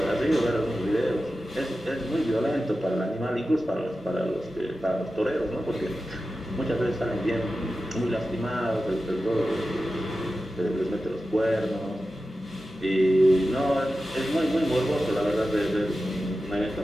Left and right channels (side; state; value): both; normal; correlation 0.93